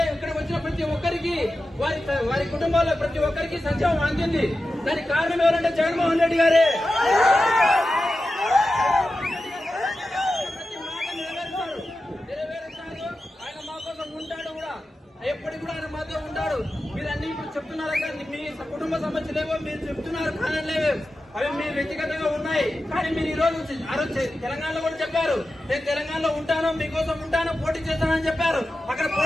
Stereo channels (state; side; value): normal; both; correlation 0.92